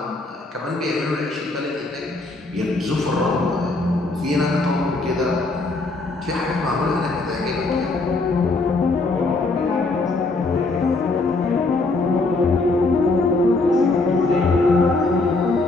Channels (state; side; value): quieter; right; 3.3 dB